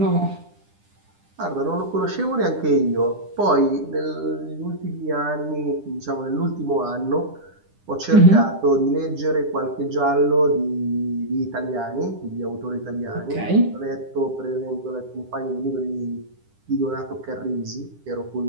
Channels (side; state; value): left; late; 10 ms